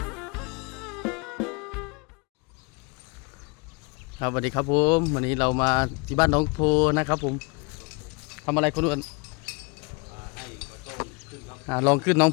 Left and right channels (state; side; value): quieter; right; 30.1 dB